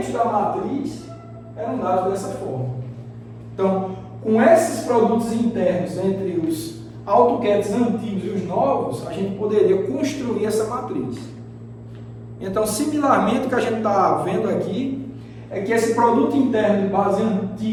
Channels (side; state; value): both; identical; correlation 1.00